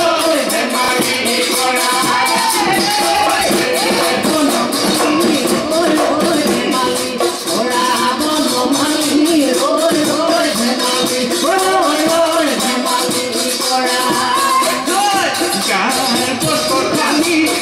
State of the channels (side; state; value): both; identical; correlation 1.00